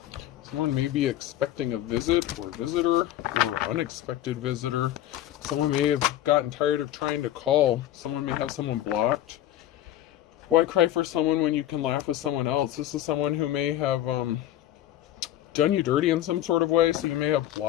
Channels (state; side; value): quieter; right; 12.8 dB